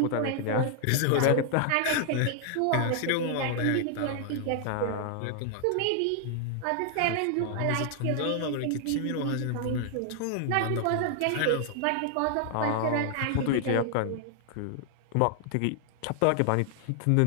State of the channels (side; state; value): both; different; correlation 0.00